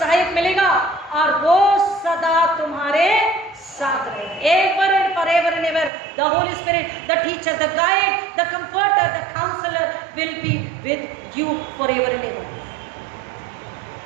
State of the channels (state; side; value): drops out; left; at 5.9 s